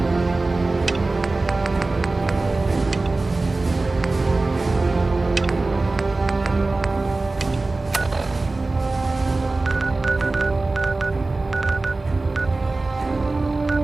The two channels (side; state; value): left; quieter; 3.3 dB